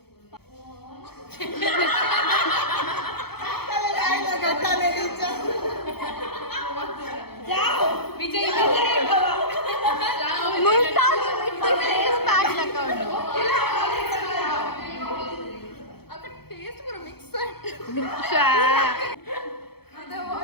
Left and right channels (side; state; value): right; late; 0.96 ms